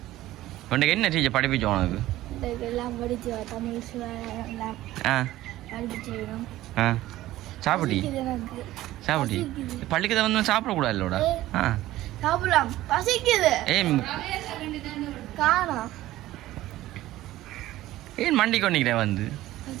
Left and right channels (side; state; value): left; quieter; 15.6 dB